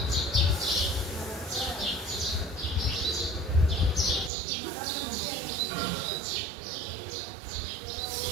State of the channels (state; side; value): drops out; left; at 4.3 s